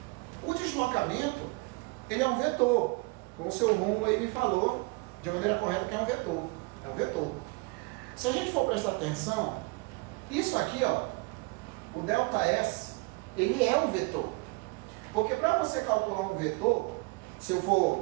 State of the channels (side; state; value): left; quieter; 27.3 dB